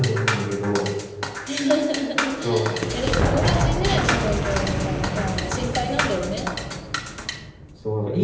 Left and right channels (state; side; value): identical; both; correlation 1.00